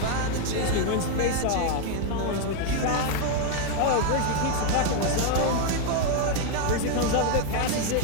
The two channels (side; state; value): both; different; correlation 0.00